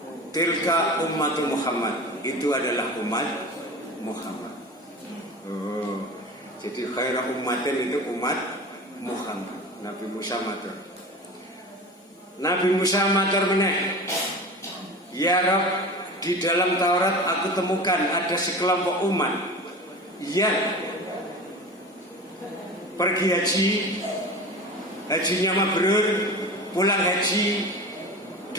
Tilka ummatu Muhammad. Itu adalah umat Muhammad. Oh, jadi khairu ummatin itu umat Muhammad. Nabi Musa matur. Nabi Musa matur meneh. Ya Rabb, di dalam Taurat aku temukan ada sekelompok umat yang pergi haji, hajinya mabrur, pulang haji,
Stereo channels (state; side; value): normal; both; correlation 0.33